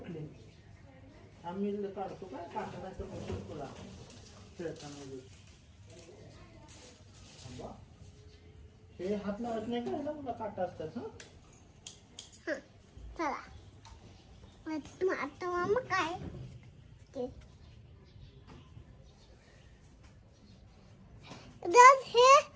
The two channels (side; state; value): both; identical; correlation 1.00